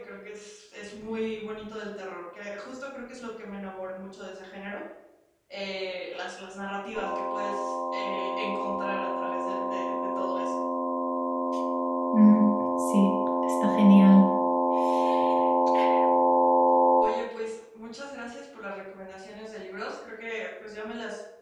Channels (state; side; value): identical; both; correlation 1.00